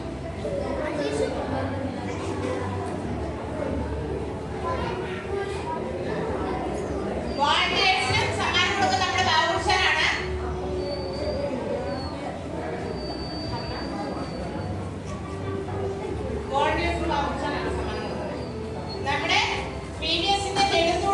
വോളണ്ടിയേഴ്സിനും സമ്മാനം കൊടുക്കുന്ന നമ്മുടെ ബാബുഷാനാണ്. വോളണ്ടിയേഴ്സിന് ബാബുഷാനാണ് സമ്മാനം കൊടുക്കുന്നത്. നമ്മുടെ PBSന്റെ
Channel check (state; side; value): identical; both; correlation 1.00